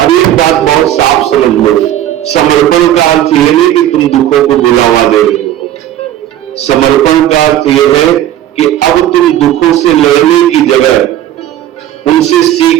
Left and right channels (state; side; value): quieter; left; 12.3 dB